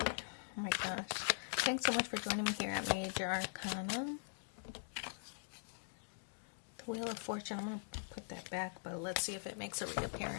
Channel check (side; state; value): right; silent; digital silence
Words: my gosh. Thanks so much for joining me here at Major Arcana. The Wheel of Fortune. I'm going to put that back, but let's see if it makes a